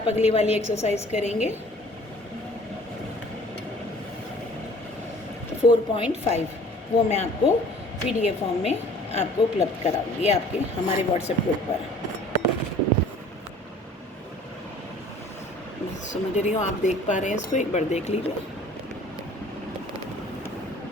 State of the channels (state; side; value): normal; both; correlation 0.51